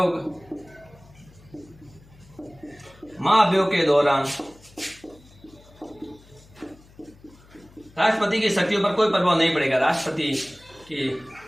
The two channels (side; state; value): left; noise; hum, 25 dB below the sound